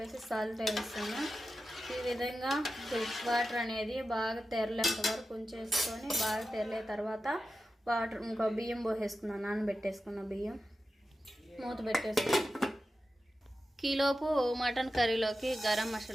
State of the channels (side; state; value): both; normal; correlation 0.92